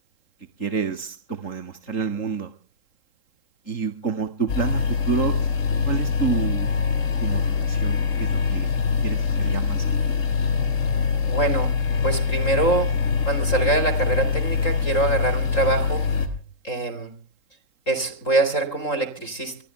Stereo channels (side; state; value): right; late; 3.8 ms